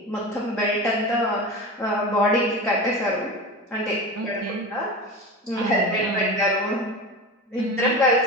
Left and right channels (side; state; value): both; normal; correlation 0.28